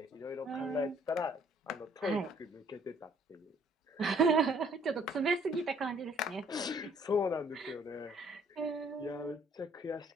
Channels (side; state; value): both; normal; correlation 0.61